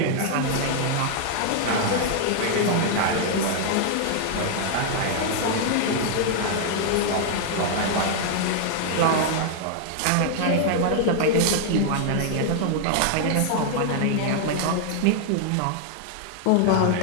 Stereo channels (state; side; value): different; both; correlation 0.00